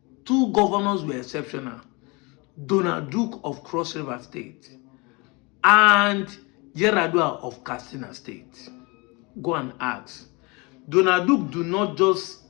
Donald Duke of Cross River State and Yaradua of Katsina State. Go and ask. Donald Duke do not just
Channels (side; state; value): right; quieter; 27.6 dB